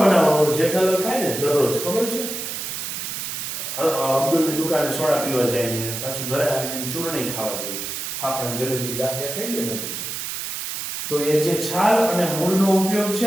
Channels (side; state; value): right; noise; hiss, 5 dB below the sound